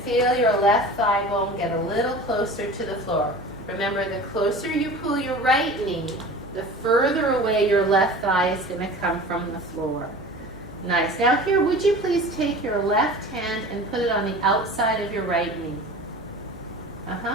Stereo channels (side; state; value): right; noise; hum, 19 dB below the sound